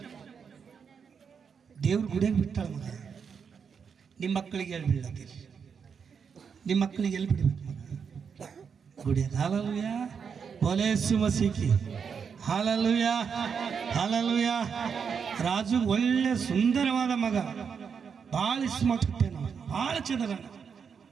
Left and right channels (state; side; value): quieter; left; 6.5 dB